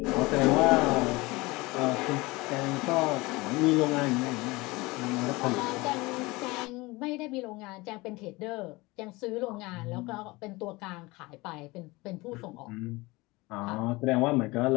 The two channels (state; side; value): quieter; right; 22.7 dB